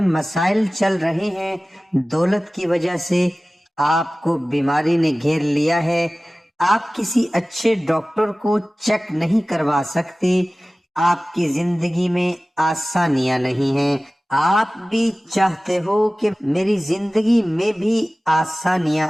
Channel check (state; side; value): normal; both; correlation 0.97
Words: مسائل چل رہے ہیں، دولت کی وجہ سے آپ کو بیماری نے گھیر لیا ہے، آپ کسی اچھے ڈاکٹر کو چیک نہیں کروا سکتے، آپ کی زندگی میں آسانیاں نہیں ہیں، آپ بھی چاہتے ہو کہ میری زندگی میں بھی آسانیاں